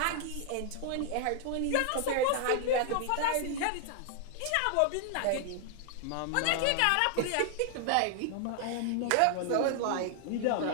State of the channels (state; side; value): different; both; correlation 0.00